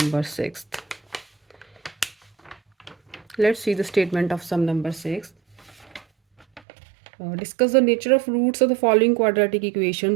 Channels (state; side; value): drops out; left; at 6.6 s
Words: number 6. Let's see the statement of sum number 6. Discuss the nature of roots of the following quadratic